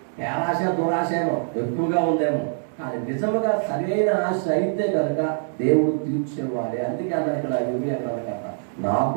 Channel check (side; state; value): left; silent; digital silence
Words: పేరాశ, దురాశ ఏమో ఎక్కువగా ఉందేమో, కానీ నిజముగా సరైన ఆశ అయితే కనుక దేవుడు తీర్చేవాడే. అందుకే అన్న ఇక్కడ ఇవి అన్నాడు కదా,